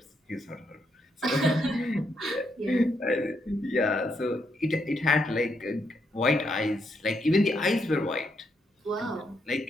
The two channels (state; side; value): normal; both; correlation 0.78